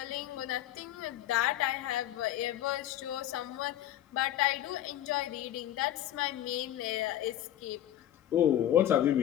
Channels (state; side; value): quieter; right; 12.3 dB